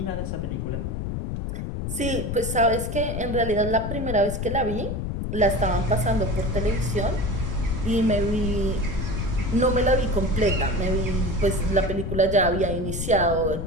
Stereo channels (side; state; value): left; noise; rumble, 4 dB below the sound